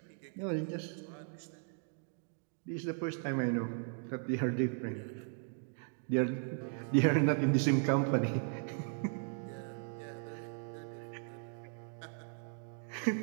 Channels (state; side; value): silent; left; 53 dB below the other